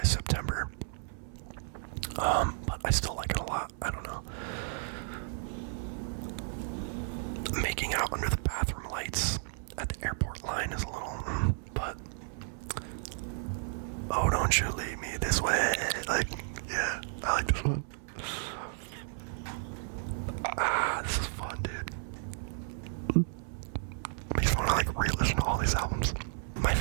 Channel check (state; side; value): silent; left; 56 dB below the other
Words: September. But I still like it a lot. I don't know. Making Out Under the Bathroom Lights at the airport line is a little, but Oh Don't You Leave Me This Way. Like, yeah, I like this one. This is fun, dude. Makes me want to like re-listen to all these albums. My